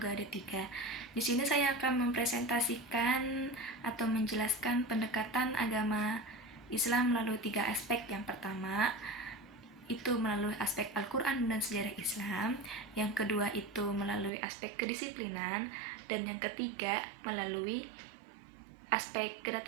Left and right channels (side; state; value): left; drops out; at 14.3 s